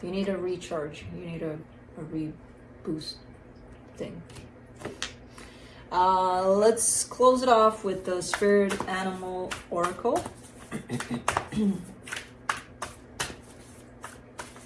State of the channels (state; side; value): identical; both; correlation 1.00